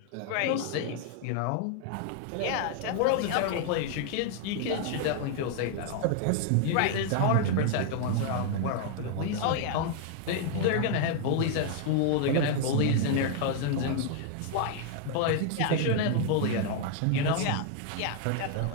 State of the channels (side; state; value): both; different; correlation 0.00